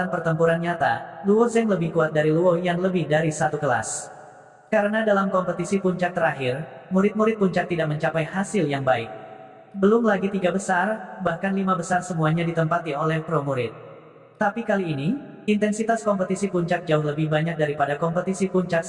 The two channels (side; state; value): both; identical; correlation 1.00